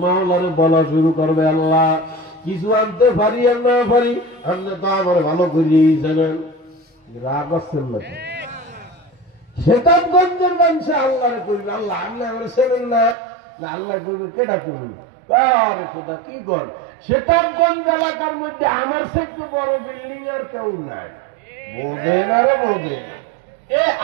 মাওলারে বলা শুরু করবে, আল্লাহ কিছু আনতে পারি আর না পারি, আপনি তো আমার ভালো করিয়েই জানেন। রাগ আসছেন না? শতাবগঞ্জের মানুষে আল্লাহরে করবে, আল্লাহ আল্লাহ আমার ছেলেন না, আল্লাহ করবে কেটা করবে? আরে খোদা কি কর, শতাবগঞ্জ এলাকার মধ্যে আমার থেকে বড় বিল্ডিং আর কেউ নাই, বোঝেন আরো বোঝেন। এ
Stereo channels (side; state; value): left; drops out; at 13.2 s